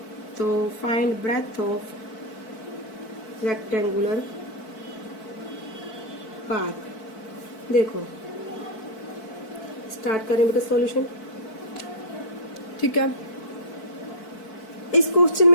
तो find breadth of rectangular park. देखो स्टार्ट करें बेटा सॉल्यूशन, ठीक है। इस क्वेश्चन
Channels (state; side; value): late; right; 4.6 ms